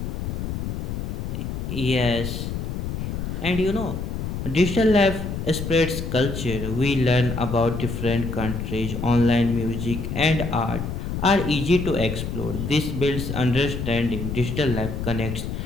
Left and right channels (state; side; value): noise; left; rumble, 4 dB below the sound